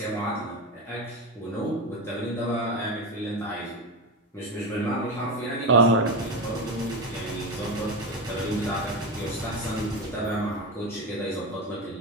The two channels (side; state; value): both; normal; correlation 0.18